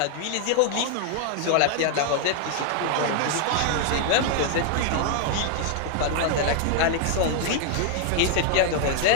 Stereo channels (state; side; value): different; both; correlation 0.00